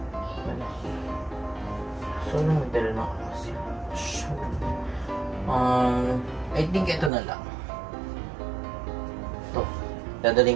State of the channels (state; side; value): drops out; left; at 7.1 s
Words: gusto ko rin magdala ng I I think ito na lang. Ito. Dadalhin